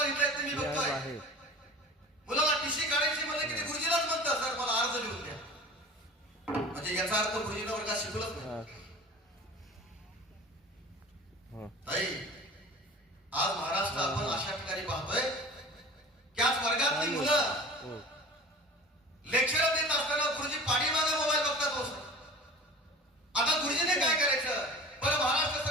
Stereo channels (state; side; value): normal; both; correlation 0.39